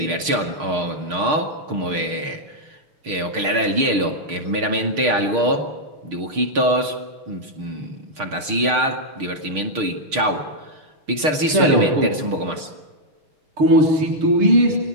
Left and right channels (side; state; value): left; late; 6.5 ms